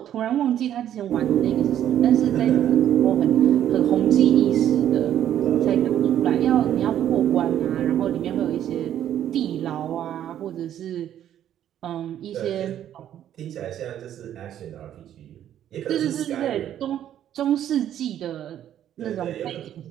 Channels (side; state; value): left; quieter; 10.9 dB